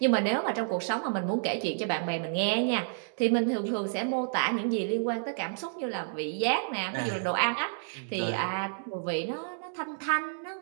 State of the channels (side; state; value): left; silent; digital silence